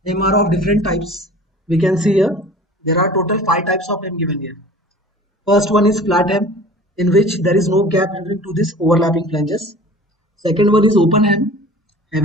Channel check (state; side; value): normal; both; correlation 0.43